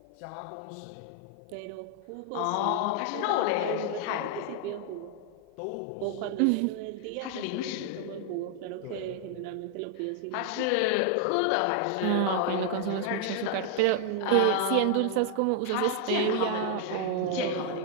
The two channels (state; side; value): different; both; correlation 0.00